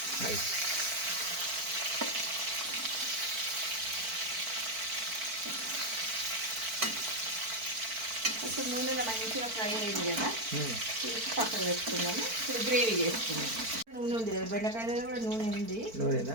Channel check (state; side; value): late; left; 4.5 ms